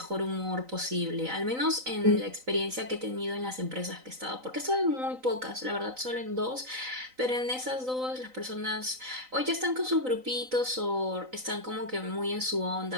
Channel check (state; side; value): late; left; 3.9 ms